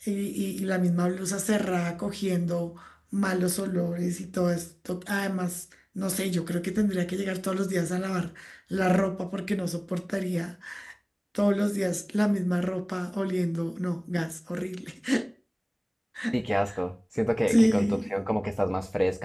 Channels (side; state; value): both; identical; correlation 1.00